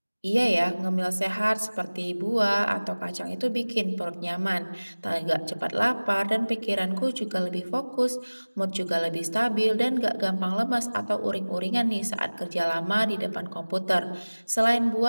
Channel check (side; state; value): both; inverted; correlation -1.00